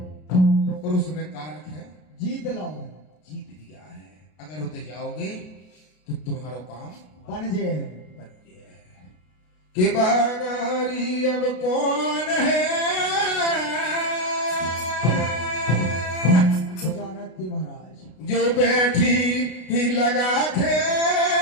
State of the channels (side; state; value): right; late; 33 ms